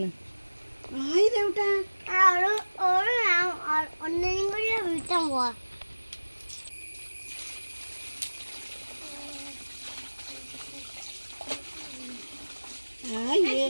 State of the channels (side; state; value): both; inverted; correlation -1.00